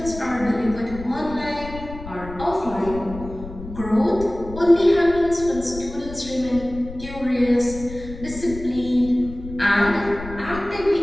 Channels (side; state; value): left; noise; rumble, 13 dB below the sound